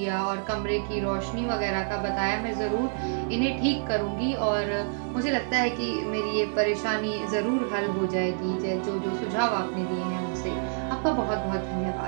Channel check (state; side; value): silent; left; digital silence